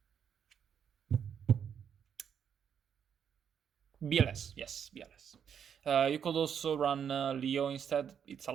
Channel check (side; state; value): left; quieter; 8.0 dB